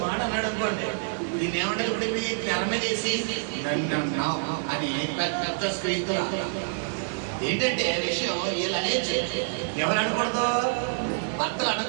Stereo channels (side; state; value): left; silent; digital silence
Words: మాట అన్నాడు అనుకోండి, దీన్ని ఏమంటే ఇప్పుడు మీ తెర మీద వేసి అని పెద్ద స్క్రీన్తో ఏంటంటే విషయం వీళ్ళు అనేది ఎవరు అనకూడదు, భర్తలు